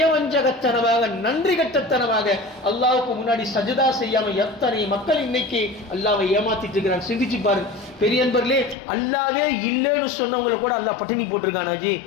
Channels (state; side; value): drops out; right; at 8.8 s